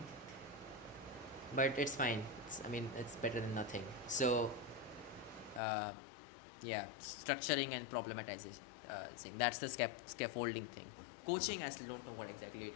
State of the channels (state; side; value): drops out; right; at 5.6 s